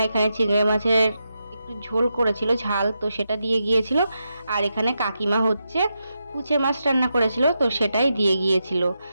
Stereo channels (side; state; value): both; inverted; correlation -0.87